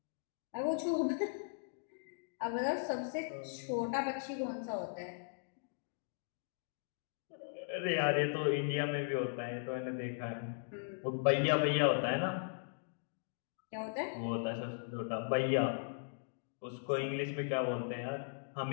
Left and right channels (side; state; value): right; silent; digital silence